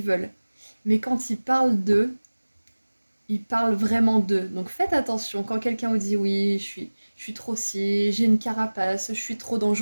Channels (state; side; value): inverted; both; correlation -1.00